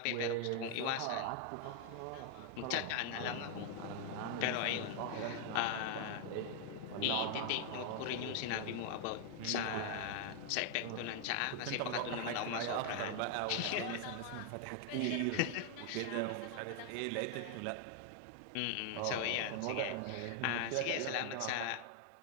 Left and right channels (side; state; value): both; different; correlation 0.00